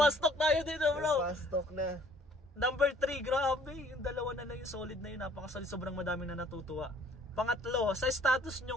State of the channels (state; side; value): normal; both; correlation 0.57